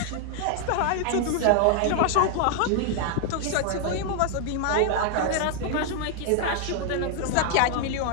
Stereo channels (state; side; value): different; both; correlation 0.00